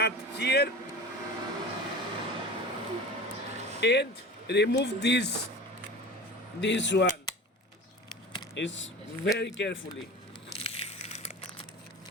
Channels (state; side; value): normal; both; correlation 0.35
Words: here and remove this one. It's very carefully.